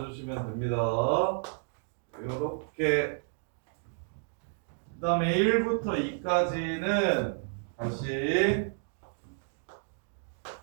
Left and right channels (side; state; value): left; silent; digital silence